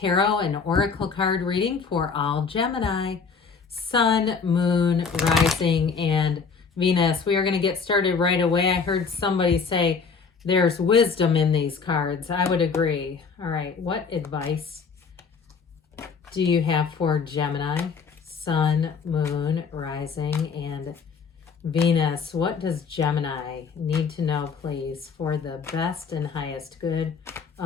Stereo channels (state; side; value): quieter; right; 5.4 dB